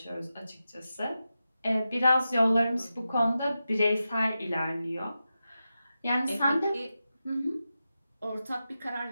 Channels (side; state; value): both; inverted; correlation -0.91